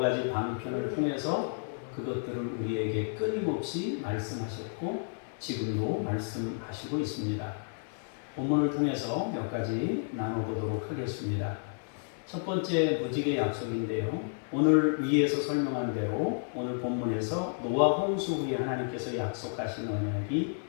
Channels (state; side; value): silent; right; digital silence